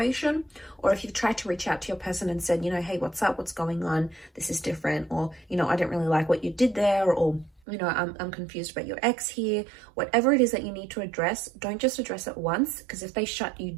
or if you've tried to reach out to your person and said, you know, hey, what's up, what's going on, this is different, or, you know, I don't really like what you did there, or, you know, I'm confused about your ex here. Whatever it is that you need to address, don't just address it once, because if they shut you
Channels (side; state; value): left; drops out; at 7.6 s